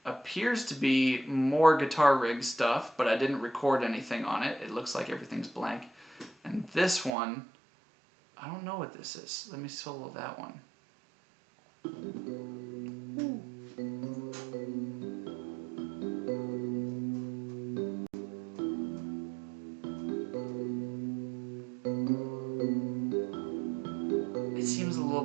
appears to be more guitar rig stuff, but I didn't record anything on it. It looks like everything's blank. And this one, I don't know what this is. Let me solo that one. It seems a little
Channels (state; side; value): drops out; left; at 7.1 s